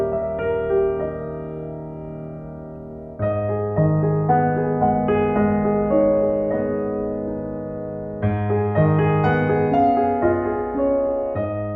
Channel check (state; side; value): identical; both; correlation 1.00